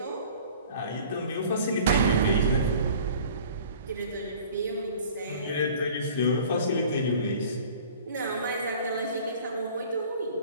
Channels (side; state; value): both; inverted; correlation -0.47